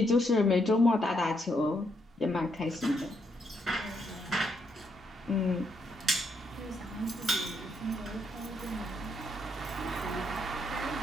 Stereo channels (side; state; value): both; normal; correlation 0.76